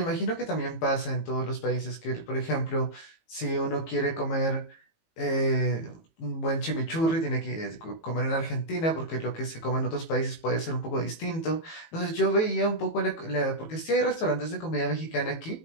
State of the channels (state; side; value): late; right; 18 ms